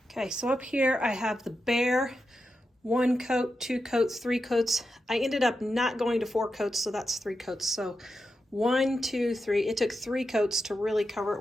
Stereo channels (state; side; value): normal; both; correlation 0.88